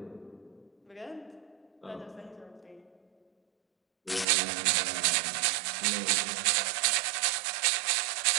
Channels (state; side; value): drops out; left; at 4.2 s